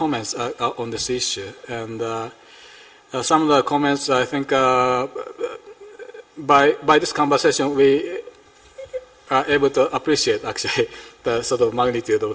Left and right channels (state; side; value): identical; both; correlation 1.00